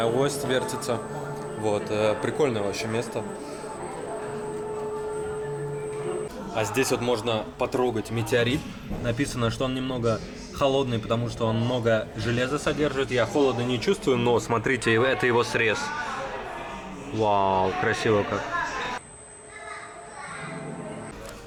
ось вертится. Вот, прикольное вообще место. А здесь вот можно потрогать метеорит. Написано, что он немного холодный, потому что он много железа содержит. Я холода не чувствую, но смотрите, это его срез. Вау, красиво как.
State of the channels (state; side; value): identical; both; correlation 1.00